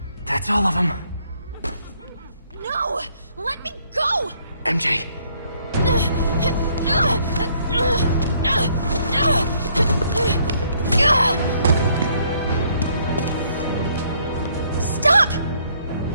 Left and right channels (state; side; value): inverted; both; correlation -0.67